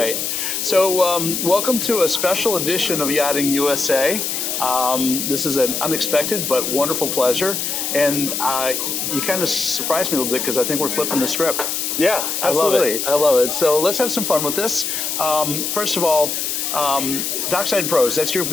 So welcome to a special edition of Yachting USA. This is an unexpected but wonderful pleasure, and you kind of surprised me a little bit because I think we're flipping the script. Yeah, absolutely. I love it. So let's have some fun with this. First of all, Dockside Pros, that's your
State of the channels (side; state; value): left; noise; hiss, 2 dB below the sound